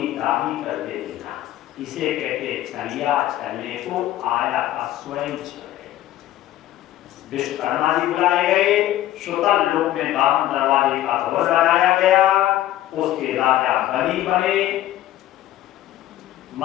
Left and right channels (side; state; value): right; quieter; 13.8 dB